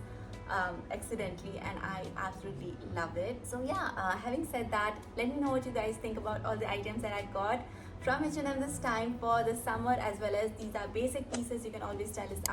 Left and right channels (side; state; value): both; identical; correlation 1.00